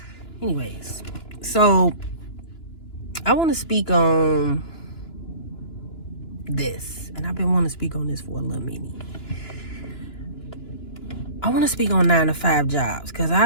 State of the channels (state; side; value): late; right; 2.9 ms